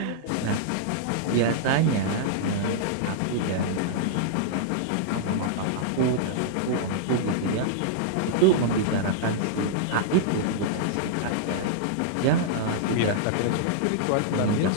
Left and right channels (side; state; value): both; different; correlation -0.01